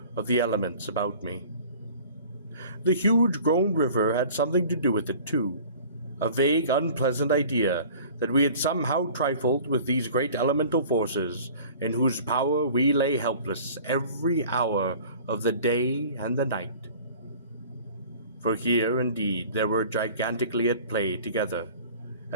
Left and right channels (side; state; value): both; inverted; correlation -0.45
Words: of the elements about me. The huge grown river had something to do with it too, a vague, unpleasant idea that we had somehow trifled with these great elemental forces in whose power we lay helpless every hour of the day and the night. For here, indeed, they were gigantically at play together,